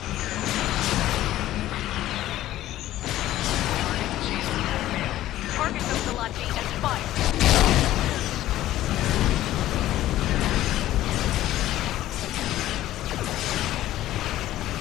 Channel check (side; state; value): right; quieter; 14.2 dB